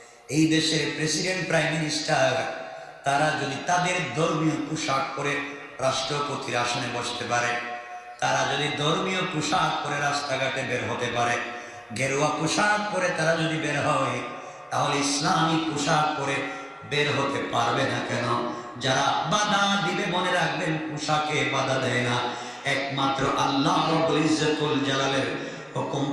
এই দেশের প্রেসিডেন্ট, প্রাইম মিনিস্টার, তারা যদি তাদের ধর্মীয় পোশাক পরে রাষ্ট্রপতির আসনে বসতে পারে, তারা যদি ধর্মীয় পোশাক পরে রাস্তাঘাটে বের হতে পারে, গেরুয়া পোশাক পরে তারা যদি বের হয়, তাহলে ইসলামিক পোশাক পরে বের হতে পারবে না কেন? যারা বাধা দিবে, মনে রাখবেন, পোশাকে বাধা দেয় না, একমাত্র আল্লাহ রাব্বুল ইজ্জতুল জালালের হুকুম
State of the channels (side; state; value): both; identical; correlation 1.00